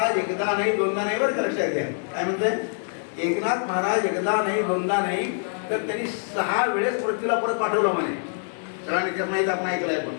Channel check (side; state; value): right; silent; digital silence